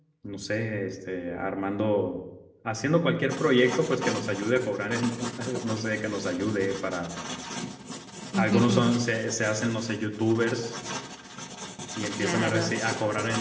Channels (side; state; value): both; identical; correlation 1.00